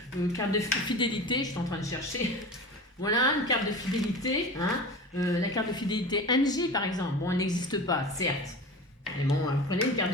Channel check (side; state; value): both; normal; correlation 0.33